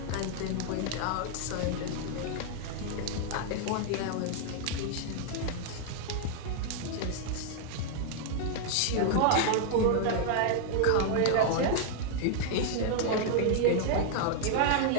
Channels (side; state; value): both; different; correlation 0.00